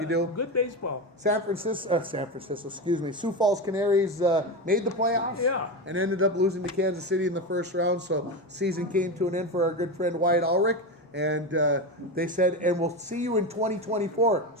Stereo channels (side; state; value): both; normal; correlation 0.18